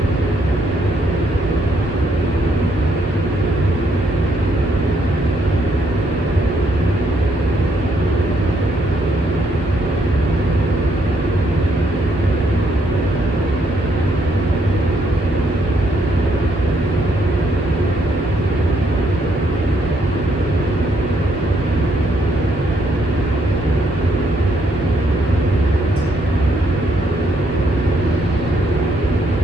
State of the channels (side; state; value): both; normal; correlation 0.73